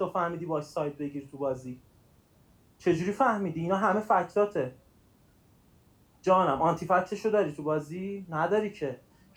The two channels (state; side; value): identical; both; correlation 1.00